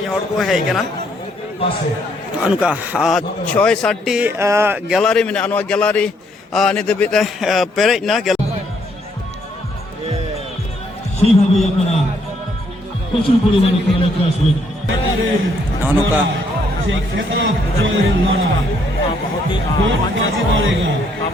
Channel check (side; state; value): both; normal; correlation 0.70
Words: हड़ को हे कना अनुका 6-7 गैलरी में अनवा गैलरी नि दबिते पेरेज ना সেইভাবেই আপনারা প্রচুর পরিমাণে খেলাধুলা আসবেন अनुका